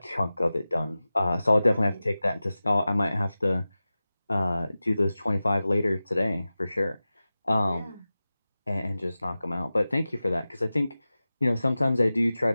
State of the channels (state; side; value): inverted; both; correlation -0.96